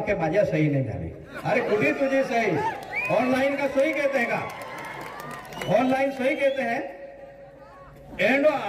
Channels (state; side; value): identical; both; correlation 1.00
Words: माझ्या सही नाही झाली अरे कुठे तुझी सही ऑनलाइन का सही कहते हैं का ऑनलाइन सही कहते हैं एंडो